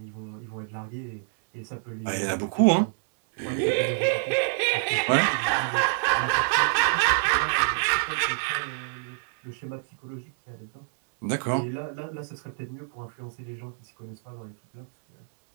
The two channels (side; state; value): left; silent; digital silence